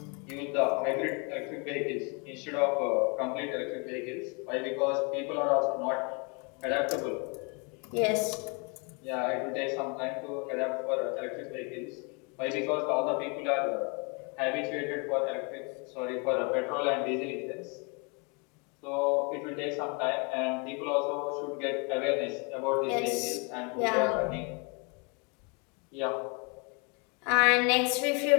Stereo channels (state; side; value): quieter; right; 33.3 dB